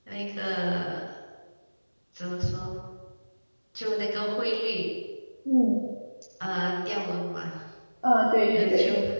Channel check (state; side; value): inverted; both; correlation -1.00